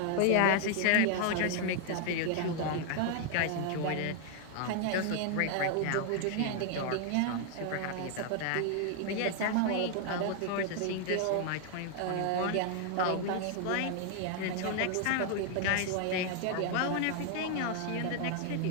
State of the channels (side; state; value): both; different; correlation 0.00